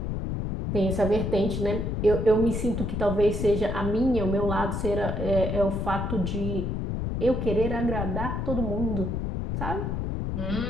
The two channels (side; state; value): left; noise; rumble, 2 dB below the sound